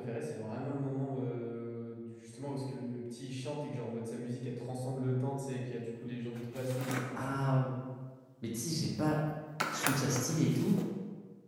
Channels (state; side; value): identical; both; correlation 1.00